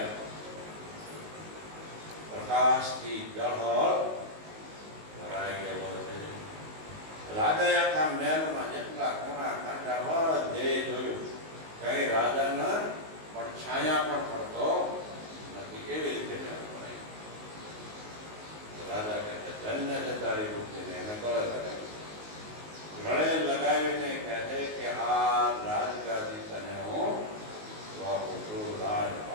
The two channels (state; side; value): late; left; 19 ms